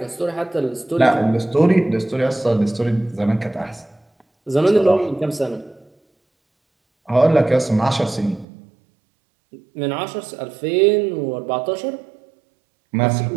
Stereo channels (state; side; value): drops out; left; at 8.5 s